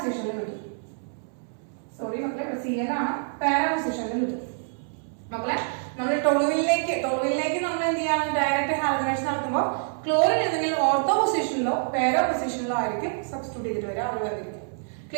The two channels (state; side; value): silent; left; 61 dB below the other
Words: കിട്ടും. സോറി മക്കളെ, Cl ആണ്, പാരാ പൊസിഷനിൽ കിട്ടും മക്കളെ. നമ്മൾ ടോളുവിനിലേക്ക് നമ്മൾ എന്ത് ചെയ്യണം? ഡയറക്റ്റ് ഹാലജനേഷൻ നടത്തുമ്പോൾ ക്ലോറിൻ ഏതെങ്കിലും ഓർത്തോ പൊസിഷനിലോ പാരാ പൊസിഷനിലോ ആയിരിക്കും സബ്സ്റ്റിറ്റ്യൂട്ട് ചെയ്തിട്ട് വരിക, അവിടെ വന്നിരിക്കും.